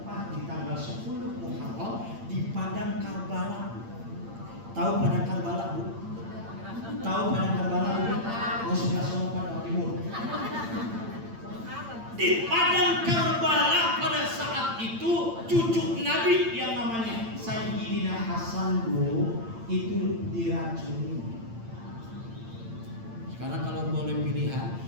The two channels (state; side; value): late; left; 8.8 ms